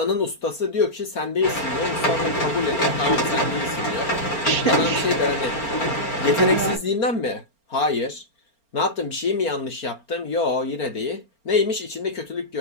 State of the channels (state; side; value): late; right; 4.4 ms